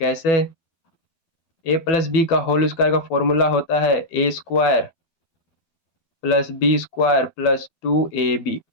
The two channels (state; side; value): late; right; 12 ms